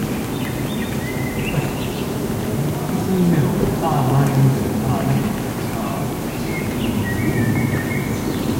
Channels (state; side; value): identical; both; correlation 1.00